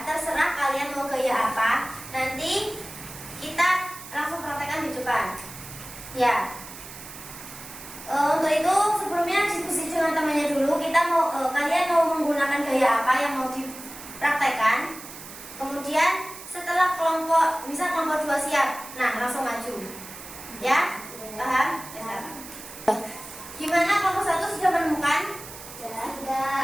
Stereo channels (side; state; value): right; noise; hiss, 14 dB below the sound